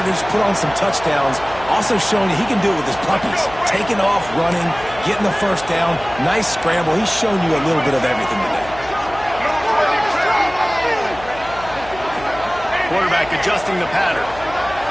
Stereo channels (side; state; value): left; noise; hum, 16 dB below the sound